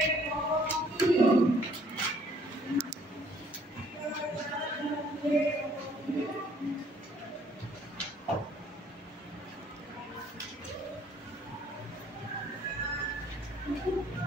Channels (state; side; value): normal; both; correlation 0.61